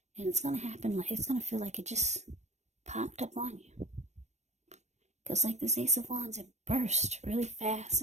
And it's going to happen, it's going to feel like it just popped up on you. Because like this Ace of Wands, it burst really fast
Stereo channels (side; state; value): left; late; 0.33 ms